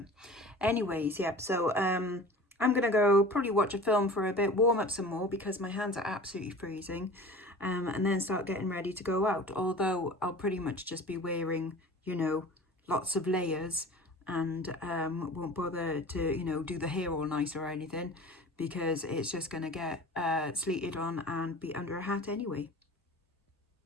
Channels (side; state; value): both; normal; correlation 0.39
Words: Anyways, yeah, so I'm going to go probably watch a film for a bit, warm up some more because my hands are absolutely freezing, and then start getting ready to go out. Although I'll pretty much just be wearing, you know, lots of layers and won't bother to, you know, do the hair all nice or anything because it's just going to get sleeted on and be under a hat anyway.